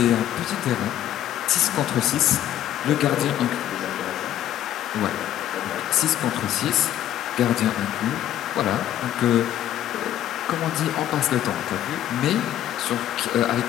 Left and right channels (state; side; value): quieter; right; 11.9 dB